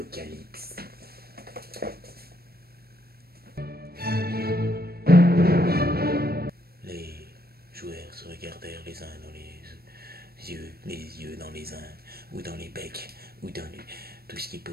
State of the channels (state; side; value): late; left; 0.45 ms